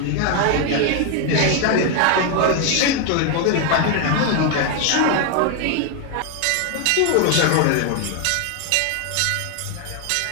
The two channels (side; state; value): both; different; correlation 0.01